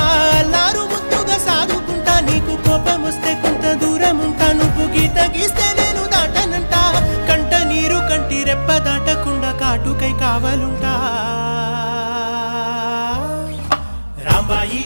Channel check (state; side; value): inverted; both; correlation -1.00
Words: అల్లారు ముద్దుగా సాదుకుంటా నీకు కోపం వస్తే కొంత దూరం ఉంటా నువ్వు గీత గీస్తే నేను దాటనంటా కంట నీరు కంటి రెప్ప దాటకుండా కాటుకై కావలుంటా రాంబాయి